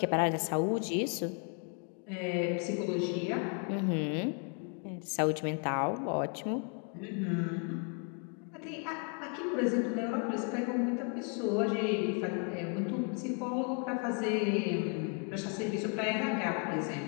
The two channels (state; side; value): quieter; right; 39.1 dB